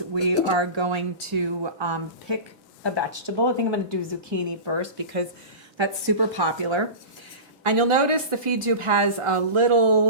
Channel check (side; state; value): left; late; 1.4 ms